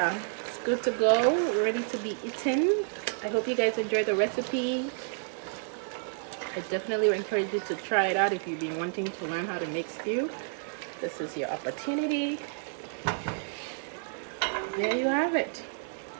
it's good to go, ready to be eaten. I hope you guys enjoyed the recipe. I definitely encourage you to try it out if you've been wanting to learn how to make stew. This is your opportunity. There you have it.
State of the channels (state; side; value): silent; left; digital silence